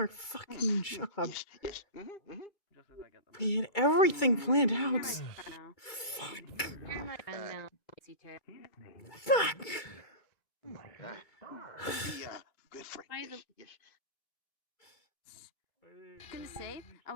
fucking job. We had everything planned out. Fuck. Fuck. I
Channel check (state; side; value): late; right; 2.3 ms